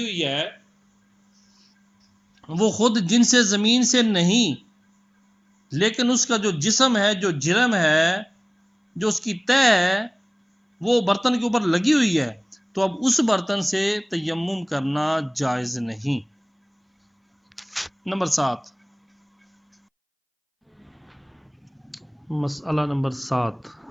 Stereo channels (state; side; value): identical; both; correlation 1.00